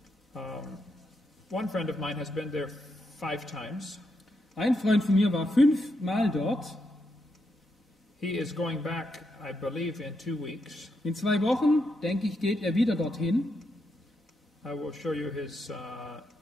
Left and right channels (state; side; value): normal; both; correlation 0.82